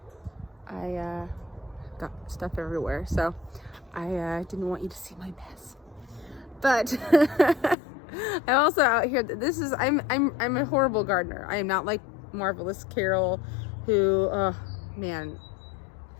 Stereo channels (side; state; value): right; drops out; at 7.8 s